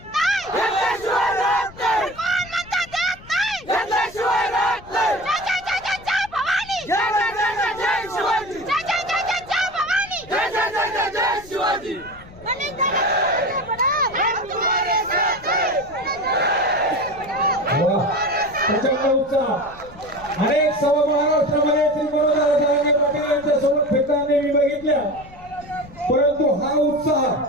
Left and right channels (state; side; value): noise; left; rumble, 20 dB below the sound